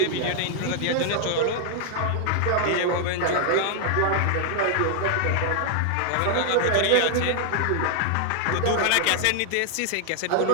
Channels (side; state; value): both; different; correlation 0.00